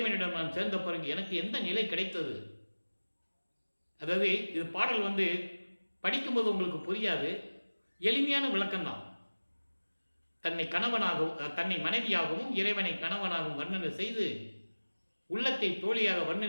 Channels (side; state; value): both; inverted; correlation -1.00